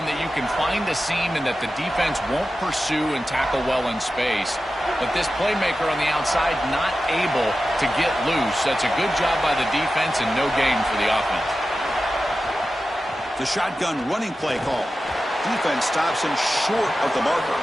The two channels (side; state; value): both; normal; correlation 0.93